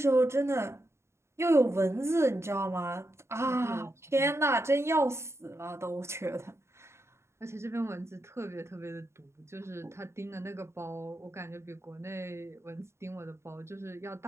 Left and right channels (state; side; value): late; left; 0.13 ms